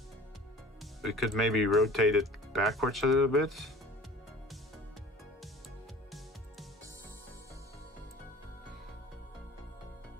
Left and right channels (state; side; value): normal; both; correlation 0.44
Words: We could maybe rotate it backwards a little bit.